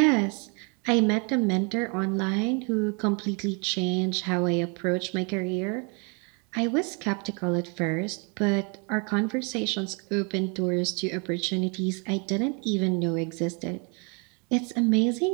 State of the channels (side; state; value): left; quieter; 34.7 dB